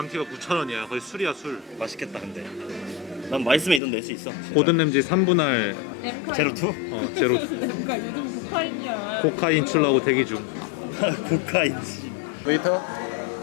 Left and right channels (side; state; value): right; drops out; at 3.8 s